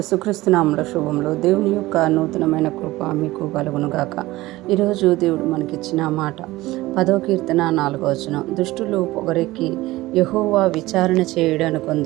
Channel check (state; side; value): quieter; left; 18.3 dB